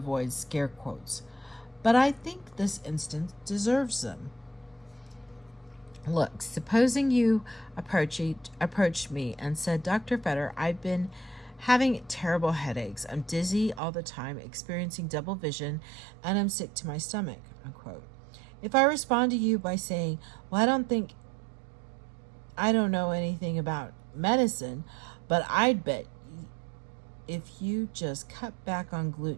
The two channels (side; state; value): left; drops out; at 13.8 s